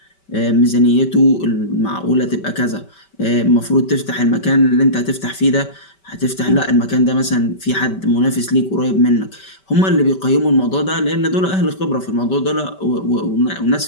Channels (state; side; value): late; right; 5.2 ms